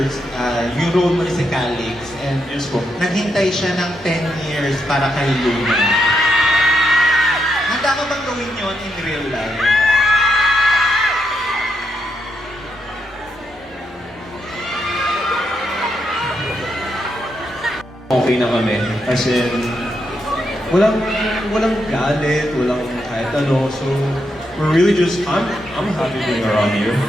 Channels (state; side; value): normal; both; correlation 0.81